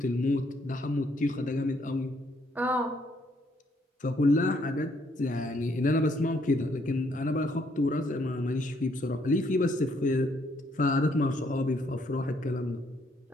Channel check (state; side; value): normal; both; correlation 0.70